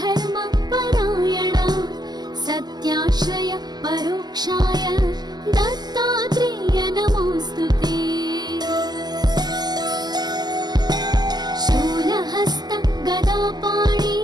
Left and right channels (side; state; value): left; late; 0.20 ms